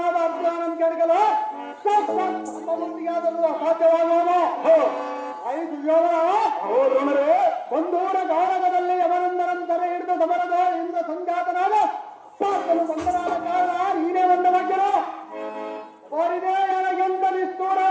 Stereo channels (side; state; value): both; identical; correlation 1.00